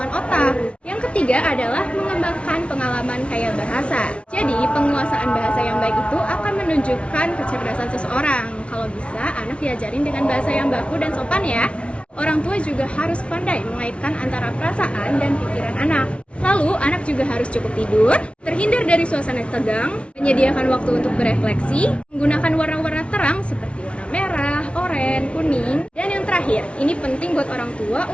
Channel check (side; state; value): right; late; 0.060 ms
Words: otak. Yang ketiga adalah mengembangkan pengalaman kaya bahasa. Jadi penguasaan bahasa yang baik itu akan menunjukkan kecerdasan seseorang. Kalau bisa, anak diajarin dengan bahasa yang baku dan sopan ya. Orang tua juga harus pandai mengaitkan antara perasaan dan pikiran anak. Lalu, anak juga harus cukup tidur, terhindar dari suasana tegang, menyediakan waktu untuk berefleksi, menggunakan warna-warna terang seperti warna merah, oranye, kuning, dan yang terakhir, ini penting buat orang tua